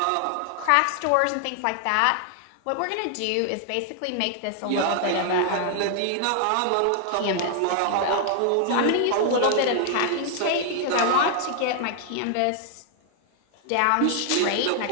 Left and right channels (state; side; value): different; both; correlation 0.00